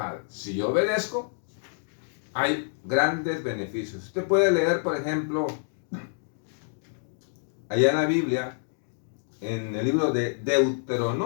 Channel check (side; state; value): right; silent; digital silence